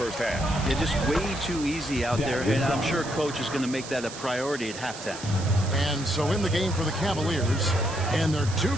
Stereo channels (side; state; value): right; noise; hiss, 12 dB below the sound